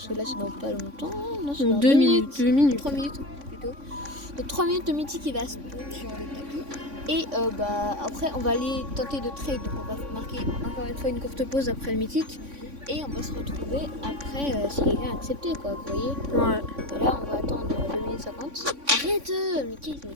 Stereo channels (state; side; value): late; left; 3.5 ms